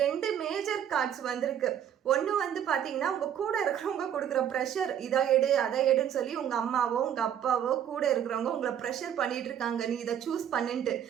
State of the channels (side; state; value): left; quieter; 9.5 dB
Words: 2 மேஜர் கார்ட்ஸ் வந்திருக்கு. ஒன்று வந்து பார்த்தீங்கன்னா உங்கள் கூட இருக்கிறவங்க கொடுக்குற ப்ரெஷர், இதை எடு அதை எடுன்னு சொல்லி உங்கள் அம்மாவோ உங்கள் அப்பாவோ கூட இருக்கிறவங்க உங்களை ப்ரெஷர் பண்ணிட்டு இருக்காங்க, நீ இதை சூஸ் பண்ணிட்டு.